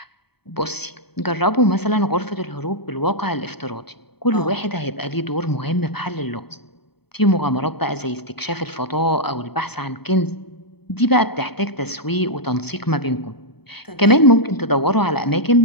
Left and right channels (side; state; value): right; late; 0.97 ms